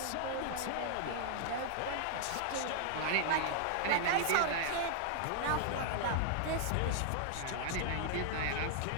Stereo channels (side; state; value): both; different; correlation -0.01